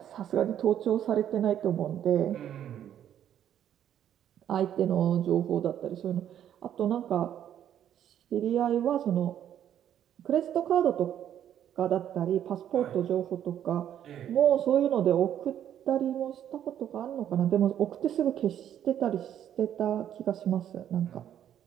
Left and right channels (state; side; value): quieter; left; 10.3 dB